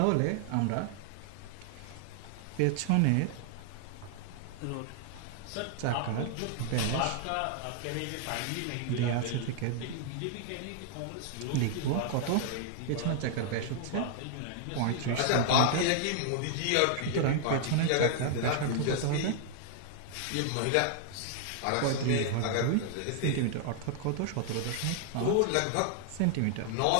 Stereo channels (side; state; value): both; different; correlation 0.00